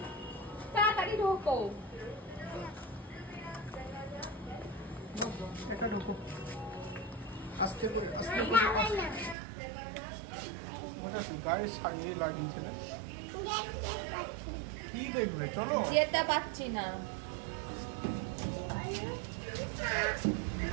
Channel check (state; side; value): drops out; left; at 9.3 s